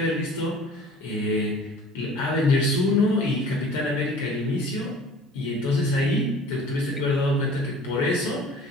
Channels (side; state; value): both; normal; correlation 0.46